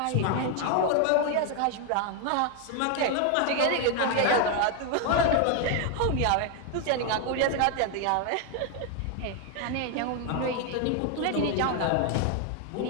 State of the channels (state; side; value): different; both; correlation 0.01